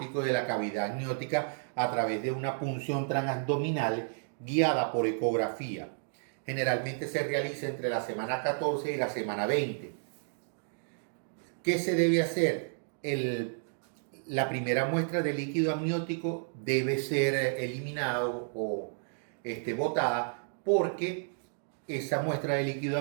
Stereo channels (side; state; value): left; silent; digital silence